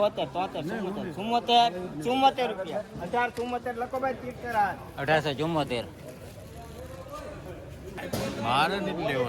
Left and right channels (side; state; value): both; identical; correlation 1.00